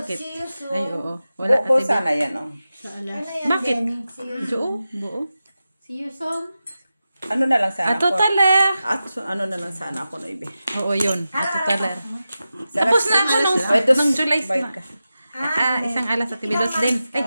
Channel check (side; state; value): both; inverted; correlation -0.92